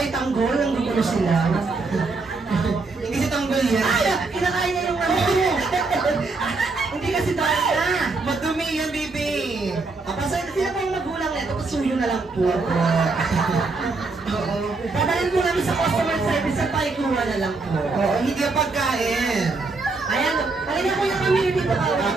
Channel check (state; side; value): quieter; left; 3.8 dB